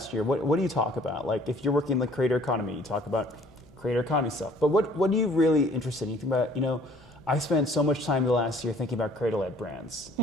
year, what do you talk about? Like if you're working in the creator economy, you talk about creator economy stuff. But what are you really interested in? You think about, I spent so much time the last year thinking about creator-led brands.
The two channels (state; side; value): noise; left; hum, 28 dB below the sound